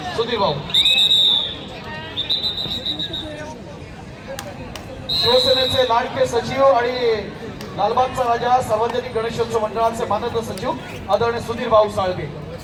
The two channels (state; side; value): identical; both; correlation 1.00